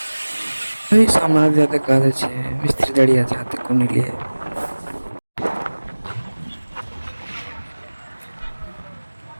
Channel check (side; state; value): both; inverted; correlation -1.00